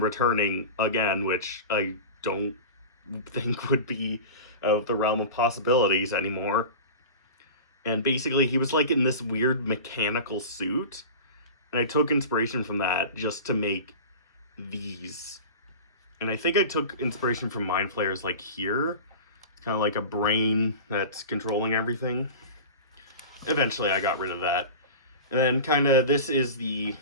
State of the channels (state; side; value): inverted; both; correlation -0.32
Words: returning again, which I don't think would be of the realm of possibilities anymore. And basically he was like in this weird mechanical suit, and I took inspiration from that just to make these. And I think I took inspiration from Mind Flayers, like here. It's kind of like a brain that's controlling everything. Eventually I got rid of that. And then kind of, this is the